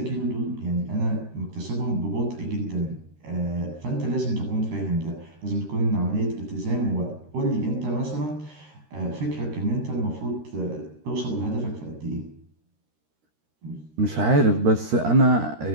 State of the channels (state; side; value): late; left; 13 ms